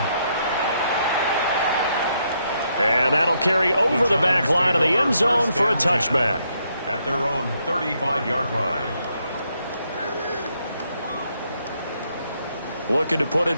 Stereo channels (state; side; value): inverted; both; correlation -0.76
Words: And that'll carry over the back line of the end zone for a touchback. At their own 35-yard line. Looking to put a